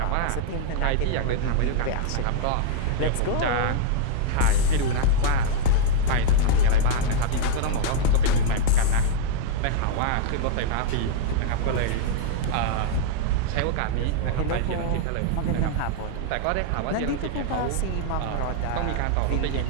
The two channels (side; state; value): both; different; correlation -0.01